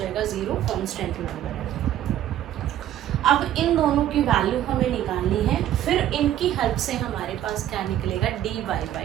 0, कॉन्स्टेंट नंबर है। अब इन दोनों की वैल्यू हमें निकालनी है, फिर इनकी हेल्प से हमारे पास क्या निकलेगा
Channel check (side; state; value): left; quieter; 11.9 dB